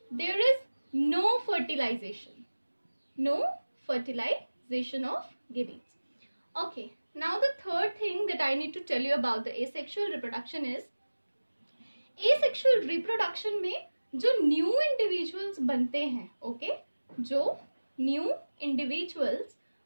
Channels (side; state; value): both; inverted; correlation -1.00